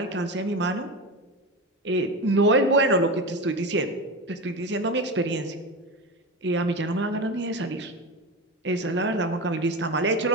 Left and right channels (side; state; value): both; normal; correlation 0.22